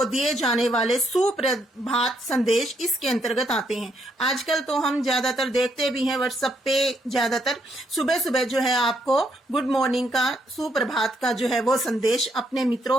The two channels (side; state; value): both; normal; correlation 0.75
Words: दिए जाने वाले सुप्रभात संदेश इसके अंतर्गत आते हैं। आजकल तो हम ज्यादातर देखते भी हैं व्हाट्सएप पे, ज्यादातर सुबह सुबह जो है आपको गुड मॉर्निंग का, सुप्रभात का जो है वो संदेश अपने